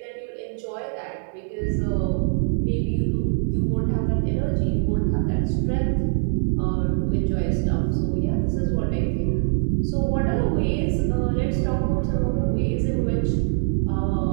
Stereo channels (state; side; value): silent; left; digital silence